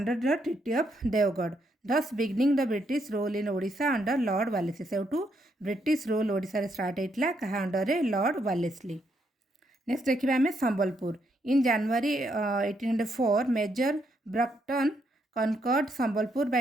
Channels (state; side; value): normal; both; correlation 0.76